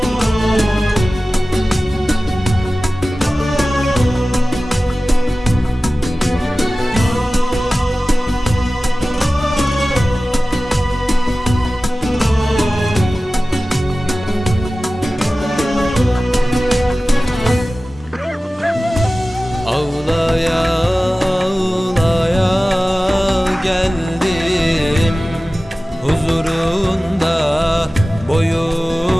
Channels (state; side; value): normal; both; correlation 0.96